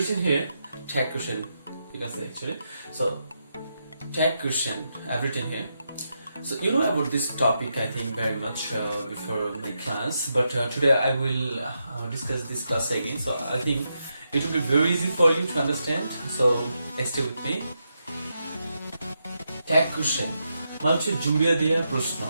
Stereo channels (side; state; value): both; inverted; correlation -0.84